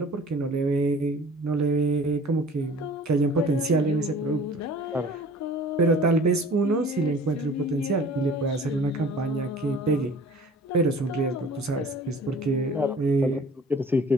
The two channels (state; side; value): normal; both; correlation 0.46